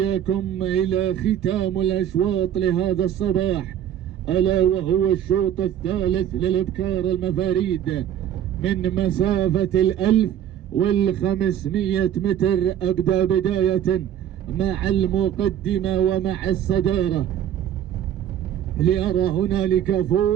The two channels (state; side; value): quieter; left; 10.3 dB